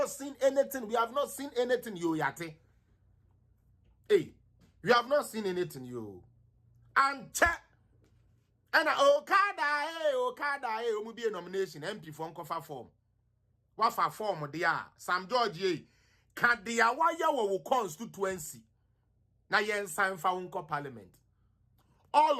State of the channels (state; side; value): identical; both; correlation 1.00